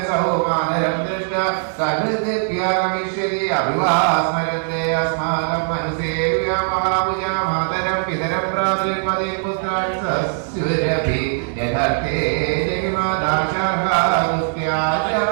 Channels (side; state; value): left; silent; 66 dB below the other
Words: മാതരം ദൃഷ്ട സഹൃദിപ്യാഗമിഷ്യതി അഭിവാ സ്മരന്തേ അസ്മാകം മനസേവ്യ മഹാഭുജ മാതരം പിതരം ഭ്രാതൃപതി പുത്രാൻ സസ്യുരഭി യഥർത്ഥേ ജഗിമാദാശാർഹാസ്ത്യാചാര്യ